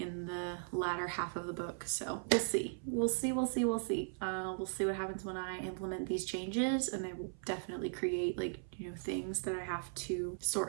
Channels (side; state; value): left; silent; 52 dB below the other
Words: in the latter half of the book. So we'll see. We'll see what happens when I implement these changes, and they will definitely create things that I have to